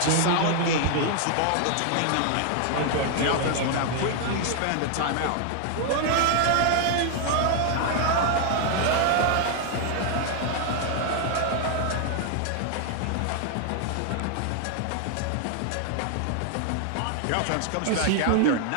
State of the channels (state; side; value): different; both; correlation 0.00